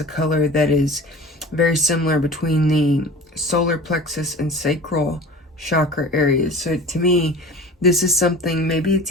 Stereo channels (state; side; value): normal; both; correlation 0.39